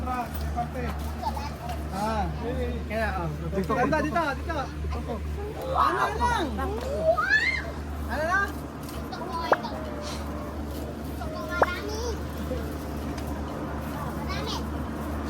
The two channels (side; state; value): both; identical; correlation 1.00